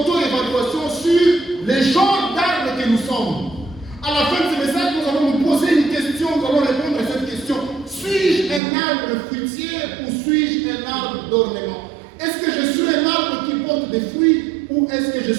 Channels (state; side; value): drops out; left; at 8.6 s